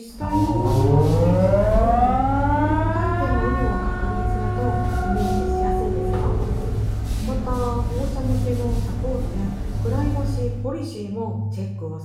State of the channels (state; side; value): identical; both; correlation 1.00